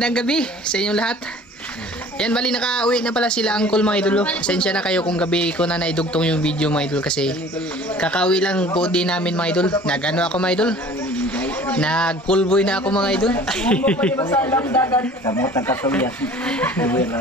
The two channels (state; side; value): normal; both; correlation 0.47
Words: gabi sa inyong lahat. Yan, bali nakauwi na pala sila uncle mga idol. Pasensya na kayo kung gabi ko na naidugtong yung video mga idol, kasi kakauwi lang po din namin mga idol. Nagano ako mga idol, nag-coolboy na ako mga idol.